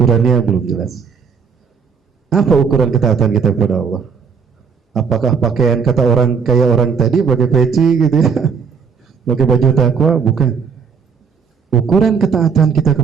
belum jelas. Apa ukuran ketaatan kita kepada Allah? Apakah pakaian kata orang kayak orang tadi pakai peci gitu ya, pakai baju takwa? Bukan. Ukuran ketaatan kita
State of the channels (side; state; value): left; quieter; 6.0 dB